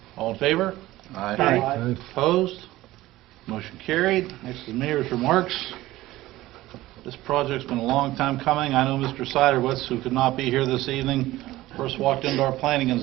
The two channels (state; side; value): quieter; left; 16.8 dB